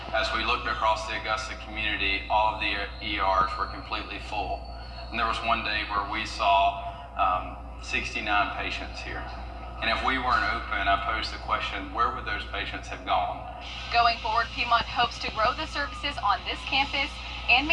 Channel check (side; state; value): both; identical; correlation 1.00